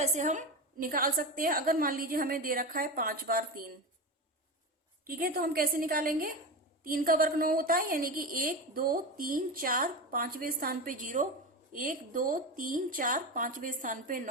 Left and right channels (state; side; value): normal; both; correlation 0.21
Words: से हम निकाल सकते हैं। अगर मान लीजिए हमें दे रखा है 5 बार 3। ठीक है, तो हम कैसे निकालेंगे? 3 का वर्ग 9 होता है, यानी कि 1, 2, 3, 4 पांचवें स्थान पे 0, 1, 2, 3, 4 पांचवें स्थान पे